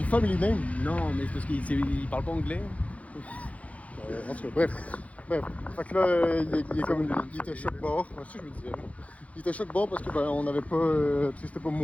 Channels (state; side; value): late; right; 0.066 ms